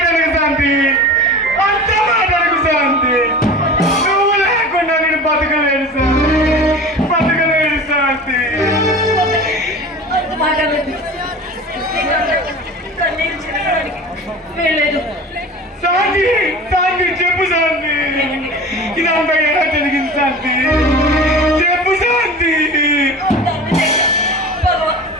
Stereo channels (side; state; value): both; normal; correlation 0.36